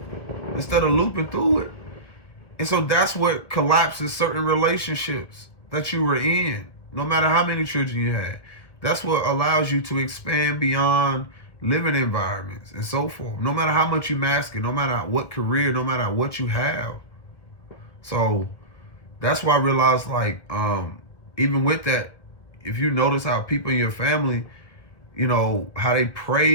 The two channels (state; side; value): late; right; 1.6 ms